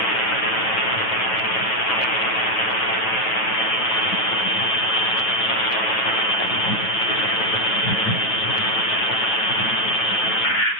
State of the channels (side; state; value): right; late; 8.9 ms